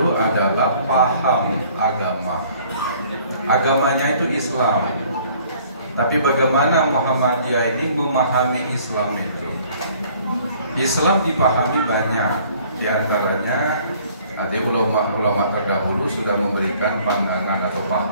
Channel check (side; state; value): both; inverted; correlation -0.56